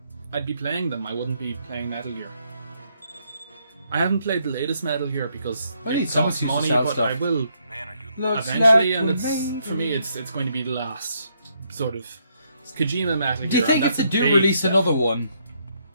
I'd be playing them. I wouldn't be playing Metal Gear. I haven't played the latest Metal Gear because I need it someone costs to use money, to sell but stuff. I will Looks eventually, like and we it's made for me, it. it's going to be the last sort of Kojima Metal Gear. Do you think and if that's they a do big release step. another one?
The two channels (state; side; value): inverted; both; correlation -0.74